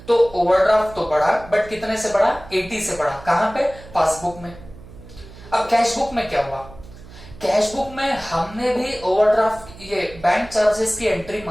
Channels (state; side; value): noise; right; hum, 19 dB below the sound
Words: तो ओवरड्राफ्ट तो बढ़ा, बट कितने से बढ़ा, 80 से बढ़ा। कहां पे, पासबुक में। अब कैश बुक में क्या हुआ, कैश बुक में हमने भी ओवरड्राफ्ट, ये बैंक चार्जेस की एंट्री